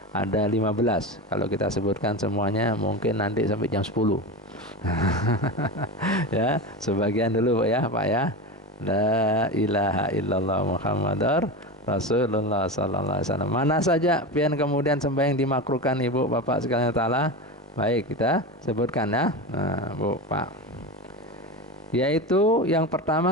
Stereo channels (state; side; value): normal; both; correlation 0.23